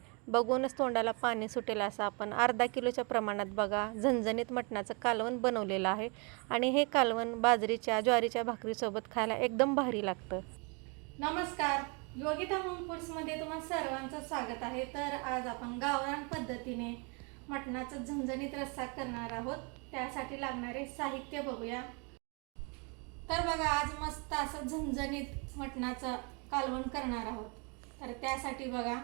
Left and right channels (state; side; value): quieter; left; 33.1 dB